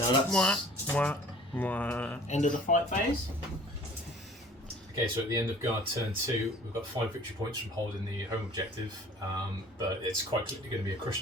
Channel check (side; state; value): both; normal; correlation 0.50